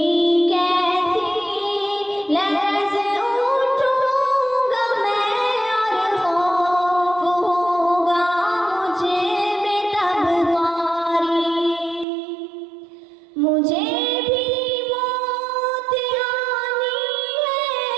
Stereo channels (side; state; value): left; drops out; at 12.1 s